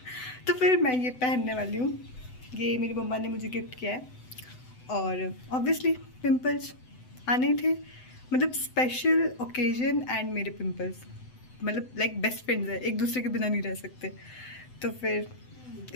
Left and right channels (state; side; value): late; right; 7.9 ms